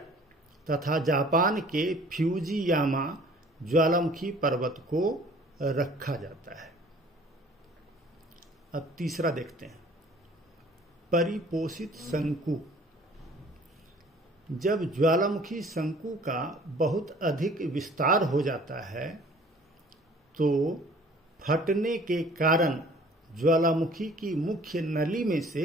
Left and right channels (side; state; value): both; normal; correlation 0.52